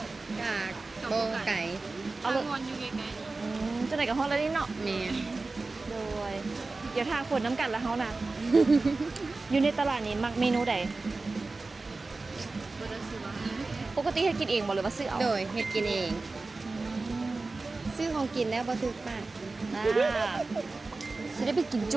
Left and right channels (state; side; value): quieter; left; 3.6 dB